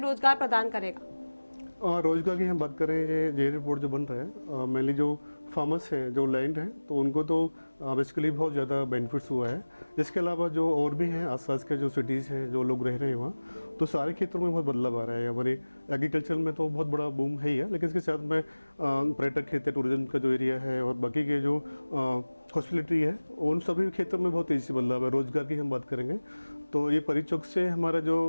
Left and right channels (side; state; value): both; inverted; correlation -1.00